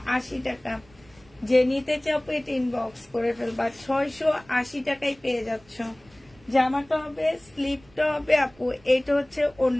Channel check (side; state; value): right; noise; rumble, 28 dB below the sound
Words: টাকা। যে নিতে চাও এটা ইনবক্স করে ফেলবা। 680 টাকায় পেয়ে যাচ্ছ। জামাটা হবে, স্লিপটা হবে আপু, এটা হচ্ছে